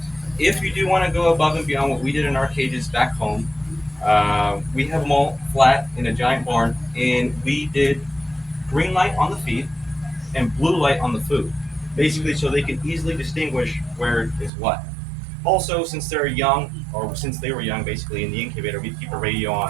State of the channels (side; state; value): left; drops out; at 14.5 s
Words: If you do want to go above and beyond what we did in our cages back home, we have them all flat in a giant barn, and we did green light on the feed and blue light on the food, basically so they can easily distinguish where is what. Also, since they're young, or since they were young, basically in the incubator, we keep a radio